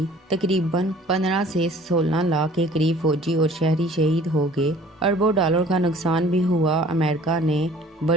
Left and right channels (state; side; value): normal; both; correlation 0.51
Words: تقریباً 15 سے 16 لاکھ کے قریب فوجی اور شہری شہید ہو گئے۔ اربوں ڈالر کا نقصان بھی ہوا۔ امریکہ نے